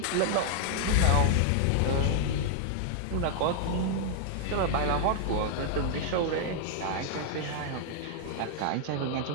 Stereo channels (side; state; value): both; different; correlation -0.01